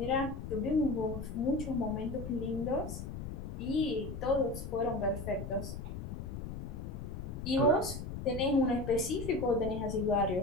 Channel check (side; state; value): left; noise; rumble, 7 dB below the sound